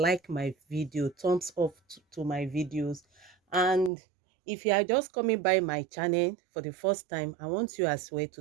my video, thumbs up to my videos. And if you are just coming by my channel for the first time, I want you as well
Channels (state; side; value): drops out; left; at 3.9 s